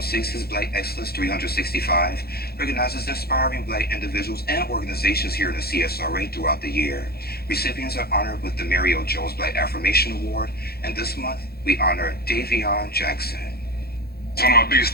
6's Black Excellence 365 recognizes inspiring Black individuals and organizations here in the CSRA throughout the year. Recipients are honored with the Mary O. Jones Black Affirmation Award, and this month we honor Davion Jackson. One of my biggest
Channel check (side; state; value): right; late; 0.46 ms